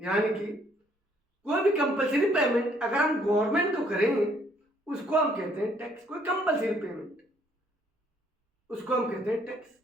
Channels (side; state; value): both; normal; correlation 0.65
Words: कि कोई भी कंपल्सरी पेमेंट अगर हम गवर्नमेंट को करें उसको हम कहते हैं टैक्स। कोई कंपल्सरी पेमेंट उसको हम कहते हैं टैक्स।